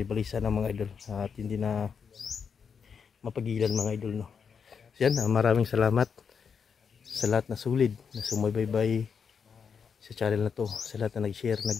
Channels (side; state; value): right; quieter; 6.5 dB